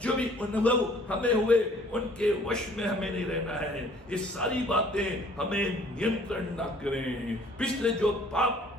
जो भी अनुभव हमें हुए उनके वश में हमें नहीं रहना है। ये सारी बातें हमें नियंत्रण ना करें। पिछले जो पाप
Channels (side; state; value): both; normal; correlation 0.56